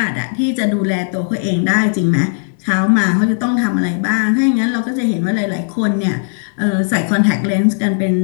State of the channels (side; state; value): right; silent; digital silence